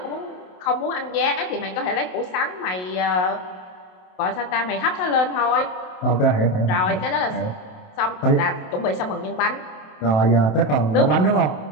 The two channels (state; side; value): late; right; 27 ms